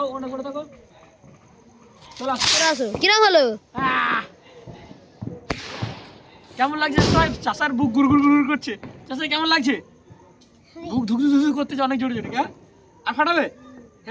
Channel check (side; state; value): both; identical; correlation 1.00